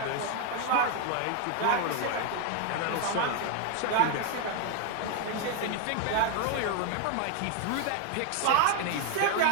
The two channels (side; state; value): both; different; correlation 0.01